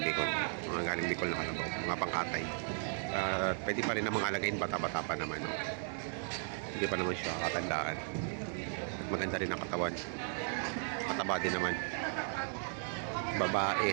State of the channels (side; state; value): left; silent; 54 dB below the other